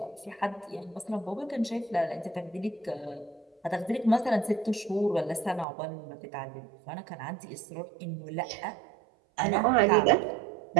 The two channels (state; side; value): drops out; left; at 5.7 s